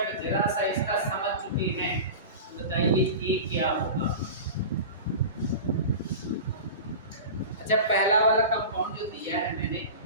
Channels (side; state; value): both; inverted; correlation -0.31